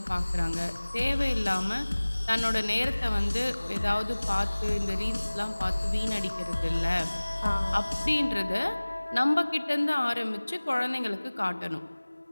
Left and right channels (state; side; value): inverted; both; correlation -1.00